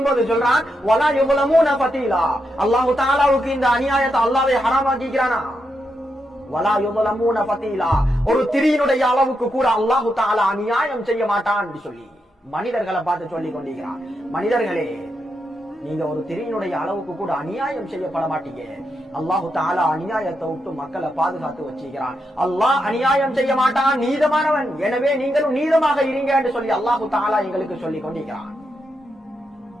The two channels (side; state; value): both; normal; correlation 0.84